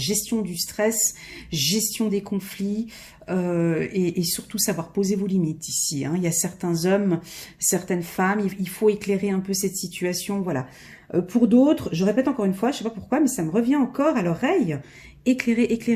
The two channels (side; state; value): both; identical; correlation 1.00